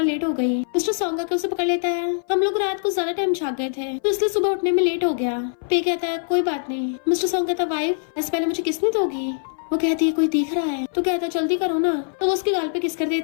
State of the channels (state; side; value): silent; right; 59 dB below the other